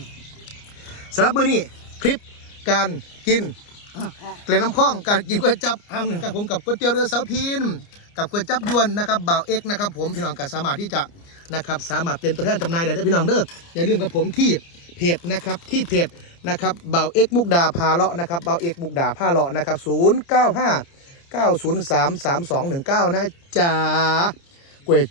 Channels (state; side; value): late; right; 29 ms